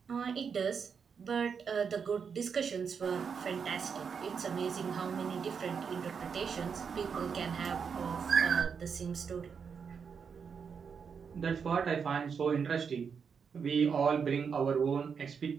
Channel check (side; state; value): left; quieter; 6.3 dB